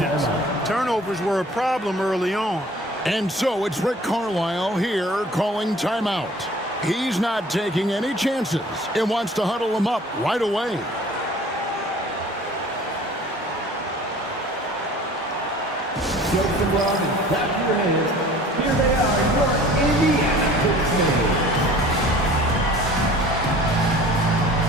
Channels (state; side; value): normal; both; correlation 0.47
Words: Turnovers were a problem early on. And so it's Rick Carlisle here calling timeout. He's not taking any chances and wants to huddle them up right away. Jokes and love and clap your hands. Here they are, your Indiana Pacers.